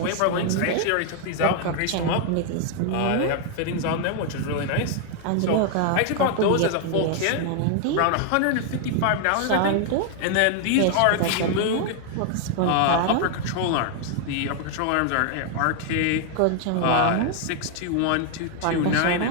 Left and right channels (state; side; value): different; both; correlation 0.00